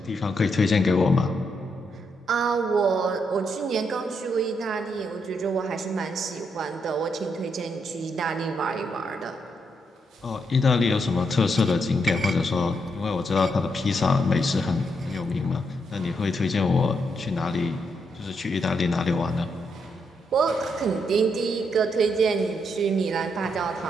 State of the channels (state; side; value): normal; both; correlation 0.79